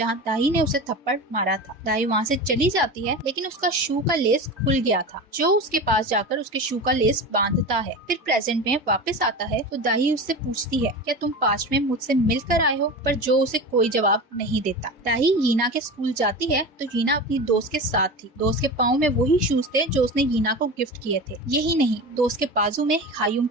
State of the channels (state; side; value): normal; both; correlation 0.28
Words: दाही ने उसे थप्पड़ मारा था। दाही वहाँ से चली जाती है, लेकिन उसका शू का लेस खुल गया था। जो उसके पास जाकर उसके शू का लेस बांधता है। फिर प्रेजेंट में वापस आता है तो दाही उससे पूछती है क्या तुम पास्ट में मुझसे मिलकर आए हो, पर जो उसे कोई जवाब नहीं देता। दाही यीना के स्कूल जाती है तो यीना अपनी दोस्त के साथ थी। दोस्त के पाँव में वही शूज थे जो उसने यीना को गिफ्ट किए थे। यही नहीं, दोस्त के बाजू में हायुम